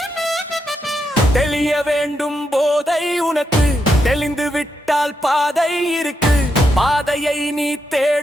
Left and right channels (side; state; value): both; normal; correlation 0.83